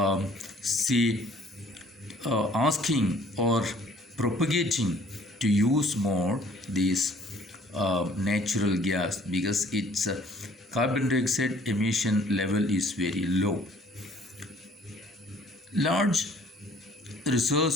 asking or propagating to use more this natural gas because its carbon dioxide emission level is very low. Large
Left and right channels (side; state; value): both; normal; correlation 0.57